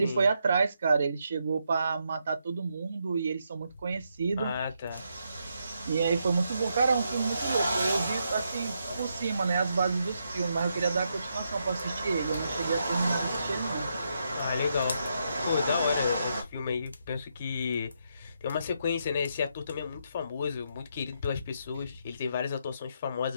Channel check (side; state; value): both; inverted; correlation -0.80